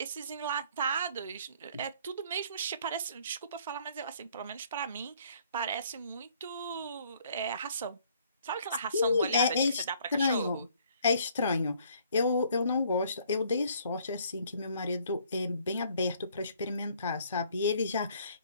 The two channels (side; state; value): both; inverted; correlation -0.61